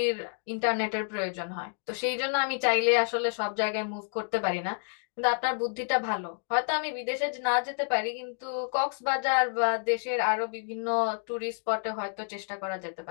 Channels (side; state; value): right; silent; 58 dB below the other